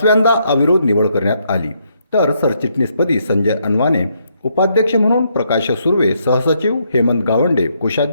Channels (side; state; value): both; inverted; correlation -0.75